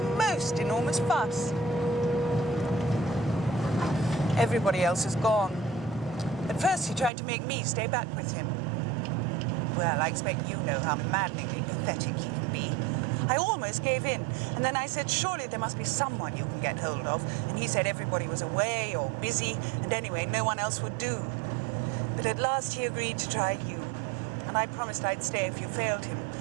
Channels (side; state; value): left; drops out; at 7.1 s